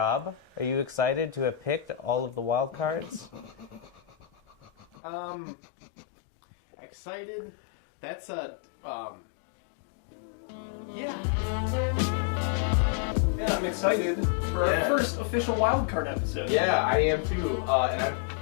are you excited to have picked all of the Wildcards? Excited? That's yeah. Yeah, I'm excited for our first official Wildcard episode. Yeah, I am too. And I'm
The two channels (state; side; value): drops out; right; at 4.9 s